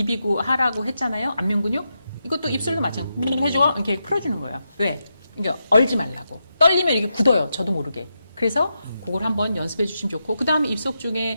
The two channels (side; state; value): both; inverted; correlation -0.86